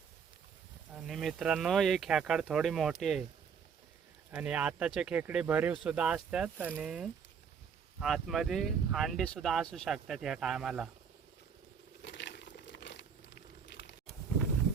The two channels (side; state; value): left; quieter; 6.7 dB